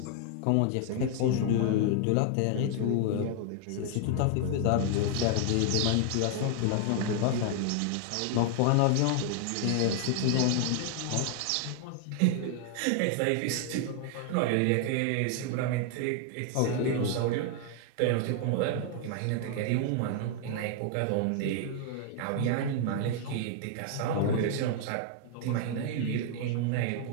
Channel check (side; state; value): both; different; correlation 0.00